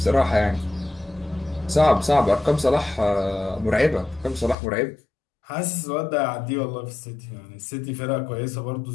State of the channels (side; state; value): right; drops out; at 4.5 s